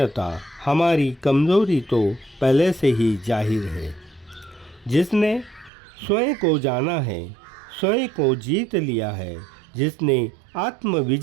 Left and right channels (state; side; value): drops out; left; at 5.7 s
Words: हमारी कमज़ोरी तो पहले से ही जाहिर है। जिसने स्वयं को जाना है, स्वयं को जीत लिया है, जिसने आत्म